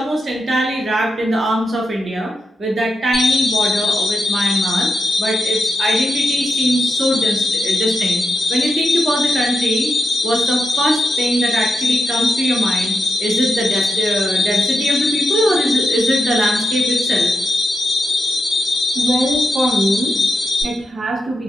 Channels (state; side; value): normal; both; correlation 0.87